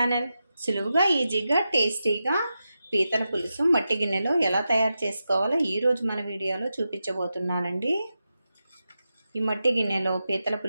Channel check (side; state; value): both; inverted; correlation -0.90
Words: సులువుగా ఈజీగా టేస్టీగా పీతల పులుసు మట్టి గిన్నెలో ఎలా తయారు చేసుకోవాలో ఈరోజు మన వీడియోలో చూపించబోతున్నానండి. ఈ మట్టి గిన్నెలో పీతల